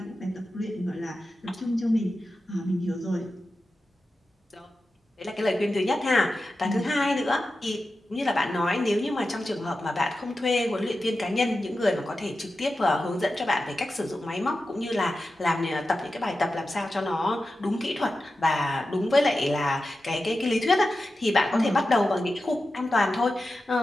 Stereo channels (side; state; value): both; normal; correlation 0.92